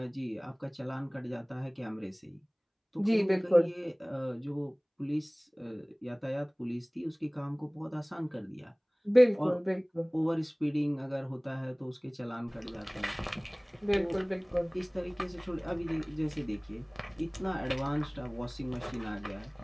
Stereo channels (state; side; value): identical; both; correlation 1.00